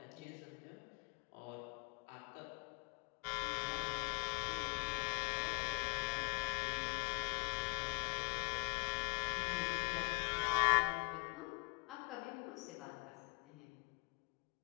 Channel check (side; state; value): right; quieter; 33.3 dB